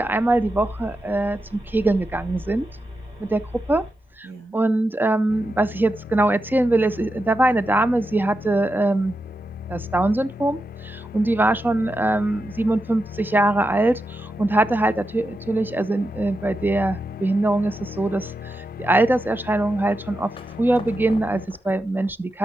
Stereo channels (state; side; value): normal; both; correlation 0.88